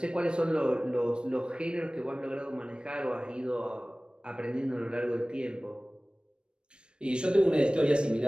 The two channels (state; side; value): late; left; 0.054 ms